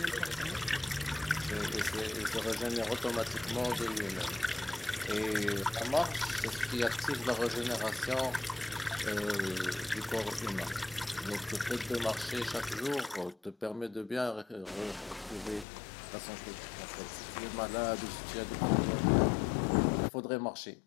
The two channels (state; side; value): drops out; right; at 15.7 s